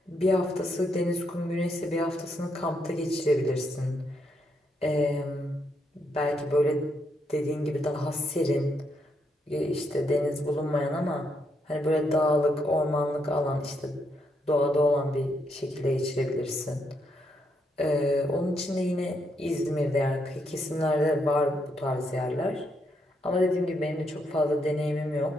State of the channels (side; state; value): both; normal; correlation 0.77